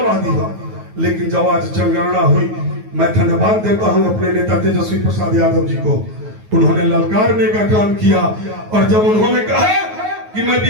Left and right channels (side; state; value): left; late; 9.4 ms